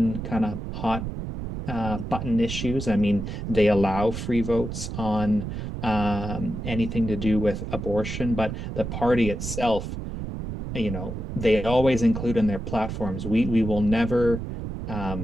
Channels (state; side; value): noise; right; rumble, 6 dB below the sound